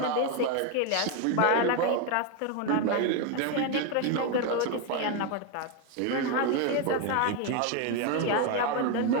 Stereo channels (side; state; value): both; different; correlation 0.02